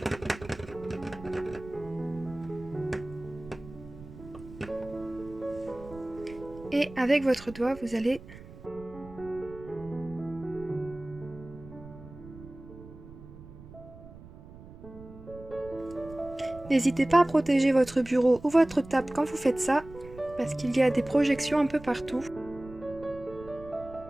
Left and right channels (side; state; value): right; noise; rumble, 17 dB below the sound